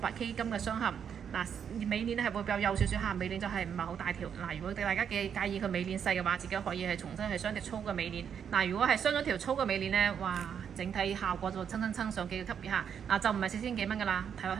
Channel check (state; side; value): quieter; left; 7.8 dB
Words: 金嘅雙嵌。尾鏈係會比較幼少少嚇，尾鏈就係唔係好大條。如果大家介意佢尾鏈細嘅話，自己可以係重新係鑲條粗嘅尾鏈。如果係鑲咗條粗嘅尾鏈咧，哇！整體效果就蹭上幾個級別嚇。就唔係4000幾蚊㗎啦，睇落